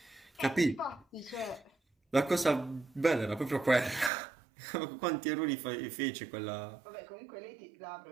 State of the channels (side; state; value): left; drops out; at 4.1 s